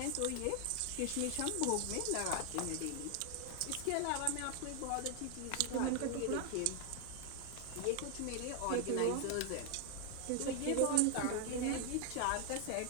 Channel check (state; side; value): different; both; correlation 0.00